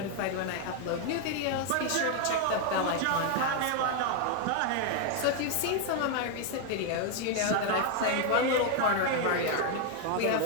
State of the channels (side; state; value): both; different; correlation 0.00